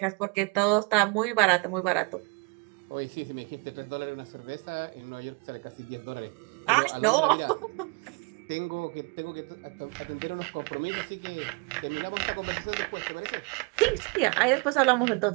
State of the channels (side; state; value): left; quieter; 32.3 dB